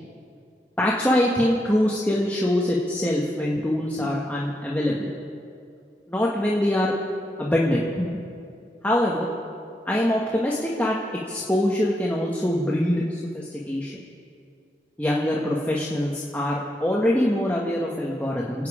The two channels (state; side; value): normal; both; correlation 0.81